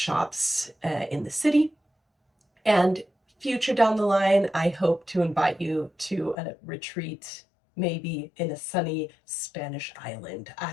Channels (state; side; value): drops out; right; at 6.4 s